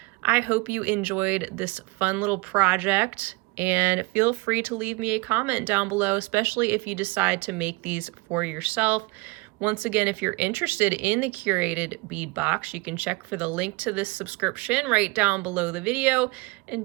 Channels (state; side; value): quieter; left; 24.6 dB